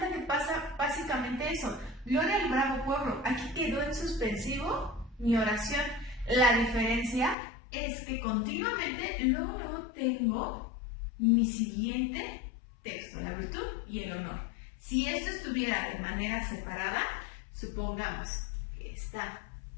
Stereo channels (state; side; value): drops out; right; at 7.4 s